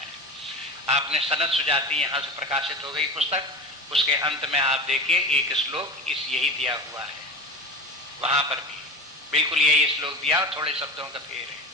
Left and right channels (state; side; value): normal; both; correlation 0.31